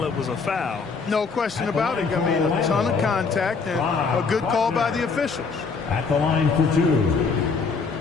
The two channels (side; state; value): right; quieter; 4.9 dB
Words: it was a foul. No question about it. I mean, a ton of contact and a good call by the officials. At the line for 2.